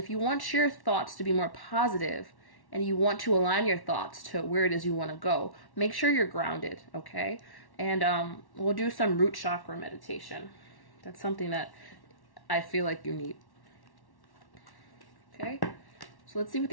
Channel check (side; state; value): right; late; 1.1 ms